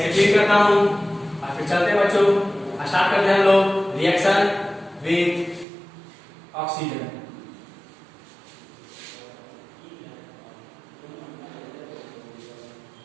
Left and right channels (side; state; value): left; drops out; at 5.7 s